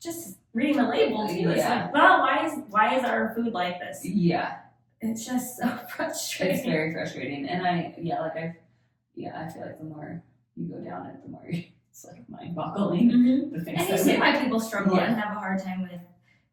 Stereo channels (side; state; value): both; identical; correlation 1.00